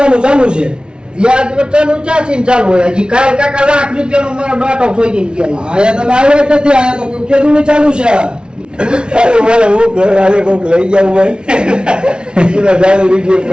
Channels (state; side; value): late; left; 0.055 ms